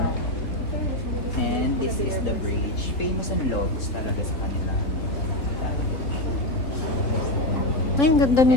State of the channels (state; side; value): late; right; 3.3 ms